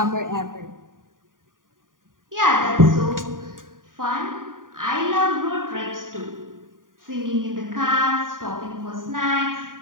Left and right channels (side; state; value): left; late; 0.89 ms